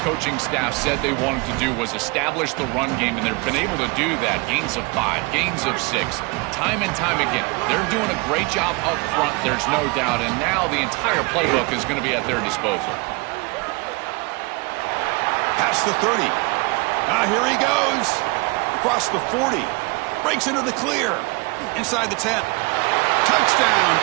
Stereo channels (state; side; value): quieter; left; 27.4 dB